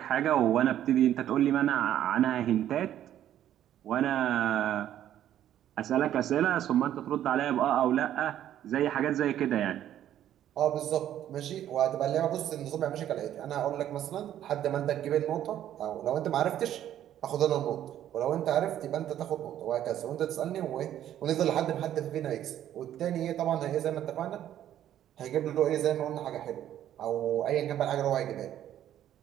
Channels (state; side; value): quieter; left; 11.4 dB